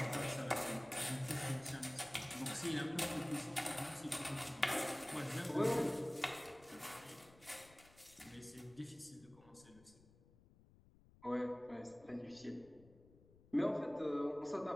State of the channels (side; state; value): left; noise; rumble, 25 dB below the sound